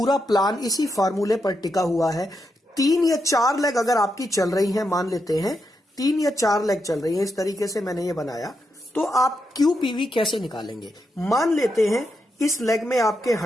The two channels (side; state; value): both; normal; correlation 0.84